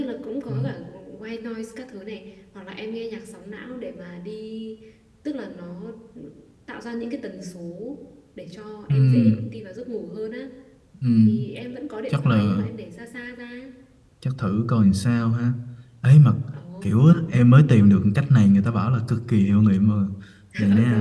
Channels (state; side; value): identical; both; correlation 1.00